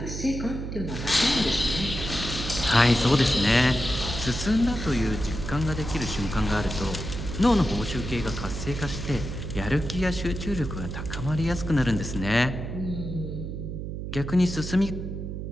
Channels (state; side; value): noise; right; hum, 6 dB below the sound